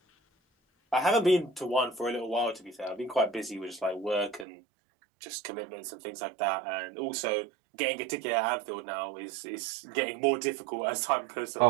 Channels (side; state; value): left; drops out; at 4.5 s